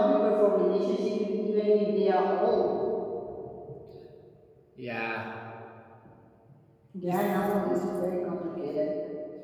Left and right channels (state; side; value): identical; both; correlation 1.00